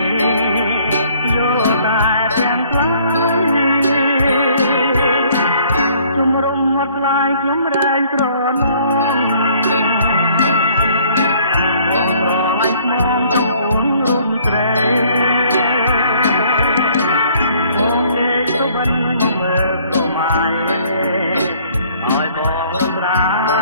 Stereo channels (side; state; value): both; inverted; correlation -0.60